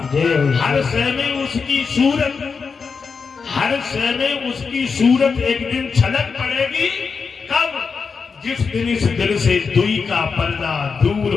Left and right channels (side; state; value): right; quieter; 5.3 dB